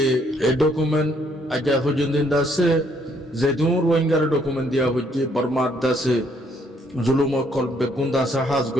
এই ডকুমেন্ট আজ পর্যন্ত আছে যে দুন রোহিঙ্গার ডকুমেন্ট দিয়া হচ্ছে বর্মার আছে জুলুম কল বেগুন দাসা হাজ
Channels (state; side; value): normal; both; correlation 0.68